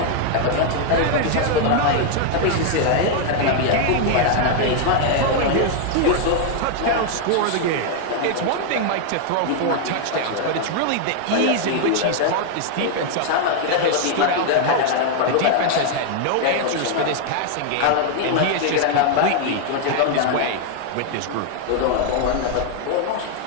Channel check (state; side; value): different; both; correlation 0.00